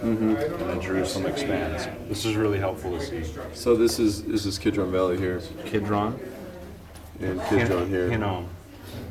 and then Jerusalem expands. This is really helpful to see. So this is Kidron Valley here, Kidron and Kidron here. Hinnom.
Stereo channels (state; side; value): identical; both; correlation 1.00